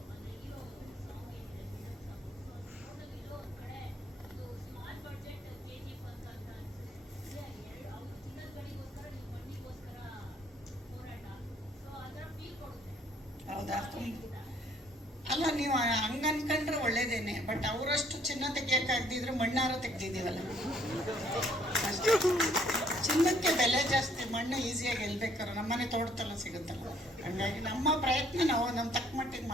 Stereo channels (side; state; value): both; normal; correlation 0.62